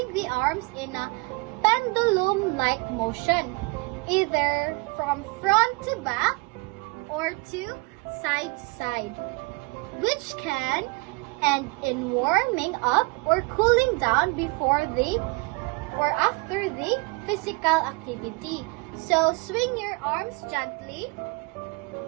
the arms in a pendulum-like motion, either from front to back or to side to side, which can end in warming up or cooling down before the or after the physical activity. So swing your arms gently.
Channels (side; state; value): left; quieter; 27.2 dB